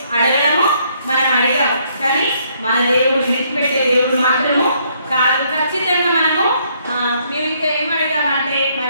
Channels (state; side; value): inverted; both; correlation -0.69